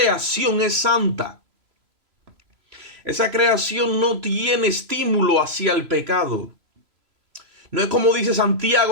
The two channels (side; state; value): left; late; 3.0 ms